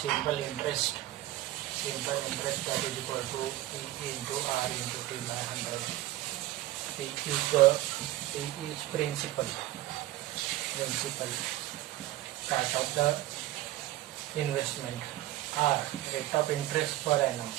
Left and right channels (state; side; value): quieter; left; 15.8 dB